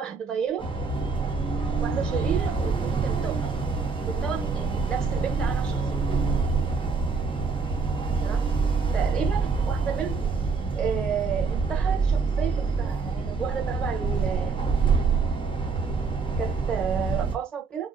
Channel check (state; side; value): quieter; left; 4.8 dB